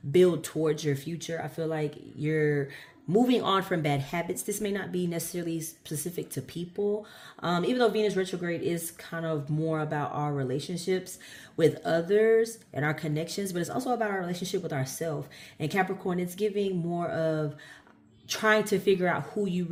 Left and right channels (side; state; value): both; identical; correlation 1.00